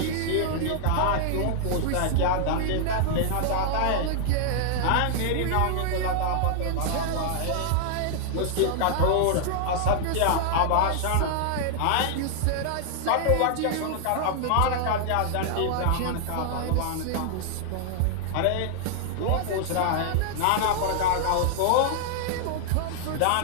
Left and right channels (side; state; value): both; different; correlation -0.01